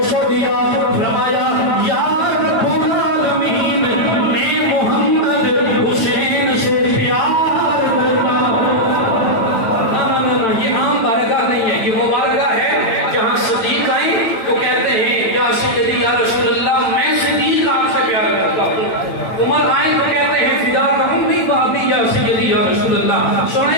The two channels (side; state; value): right; late; 9.0 ms